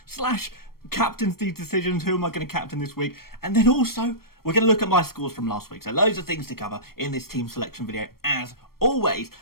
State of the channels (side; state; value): right; late; 0.94 ms